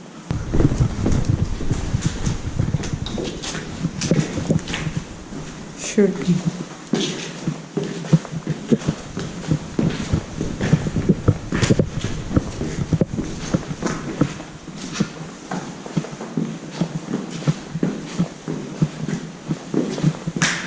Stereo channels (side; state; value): both; identical; correlation 1.00